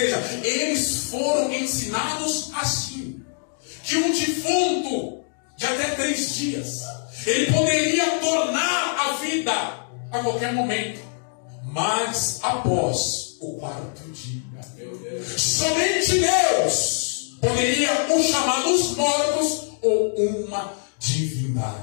eles foram ensinados assim, que um defunto de até 3 dias, ele poderia tornar a vida a qualquer momento, mas após o 4º dia, somente Deus poderia o chamar dos mortos ou uma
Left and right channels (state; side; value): silent; right; 63 dB below the other